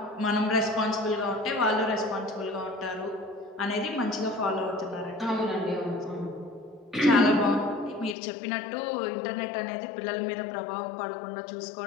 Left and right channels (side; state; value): right; drops out; at 8.2 s